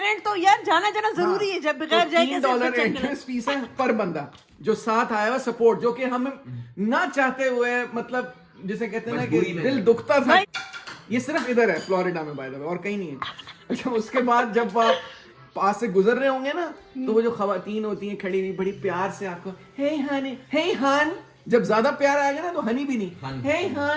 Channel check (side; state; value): both; identical; correlation 1.00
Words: तो यार जाना जरूरी है, जब बगैर जाए कैसे $3 बच्चा एंट्रेंस फीस है पर बंदा जो साथ आया हुआ सपोर्ट, जो कि हम ना चाहते हुए मतलब जिसे कहते हैं ना कि मजबूरी में दिल है। दुखता था। ये सिर्फ इधर है फ्लोरिडा में बाय द वे, और कहीं नहीं है। अच्छा उसके बाद जब आप पास से गुजर रहे होंगे ना तो वो जो खवातीन होती हैं खड़ी हुई बड़ी प्यार से आपको हे हनी, हे हन, जब ज्यादा प्यार आएगा ना तो हनी भी नहीं, हन। हे